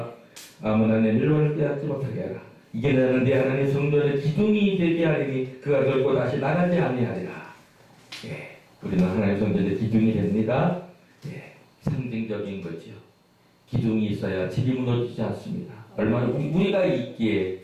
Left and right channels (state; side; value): identical; both; correlation 1.00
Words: 아무나 내 멸류관을 빼앗지 못하게 하라. 이게 나는 내 하나님 성전의 기둥이 되게 하리니 그가 결코 다시 나가지 아니하리라. 예, 우리는 하나님 성전의 기둥이 됩니다. 예, 상징적인 거죠. 기둥이 있어야 집이 무너지지 않습니다. 얼마나 우리가 있기에